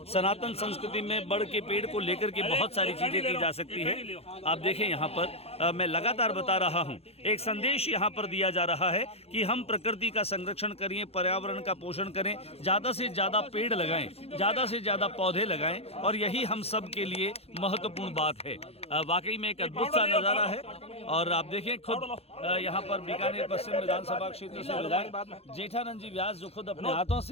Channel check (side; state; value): right; late; 0.29 ms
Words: सनातन संस्कृति में बड़ के पेड़ को लेकर के बहुत सारी चीज़ें की जा सकती है। आप देखें यहाँ पर मैं लगातार बता रहा हूँ एक संदेश यहाँ पर दिया जा रहा है कि हम प्रकृति का संरक्षण करें, पर्यावरण का पोषण करें, ज़्यादा से ज़्यादा पेड़ लगाएं, ज़्यादा से ज़्यादा पौधे लगाएं और यही हम सब के लिए महत्वपूर्ण बात है। वाकई में एक अद्भुत सा नज़ारा है। और आप देखें खुद यहाँ पर बीकानेर पश्चिम विधानसभा क्षेत्र से विधायक जेठानंद जी व्यास जो खुद अपने हाथों